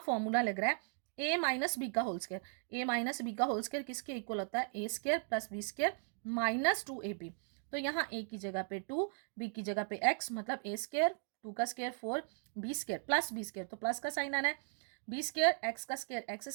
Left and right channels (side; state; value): left; silent; 53 dB below the other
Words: फॉर्मूला लग रहा है ए माइनस बी का whole square, A minus B का होल स्क्वायर किसके इक्वल होता है, A square plus B square minus 2ab। तो यहाँ ए की जगह पे 2, बी की जगह पे x, मतलब ए स्क्वायर 2 का square 4, B square plus B square, तो प्लस का साइन आना है, बी स्क्वायर एक्स का square X